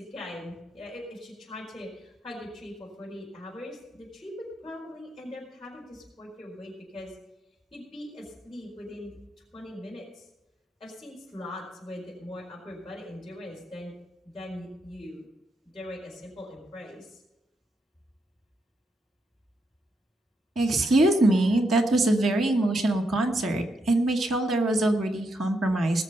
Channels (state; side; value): normal; both; correlation 0.81